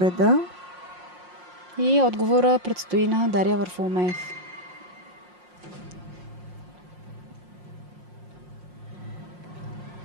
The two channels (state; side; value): late; left; 5.6 ms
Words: И отговора предстои на Дария Варфоломеев.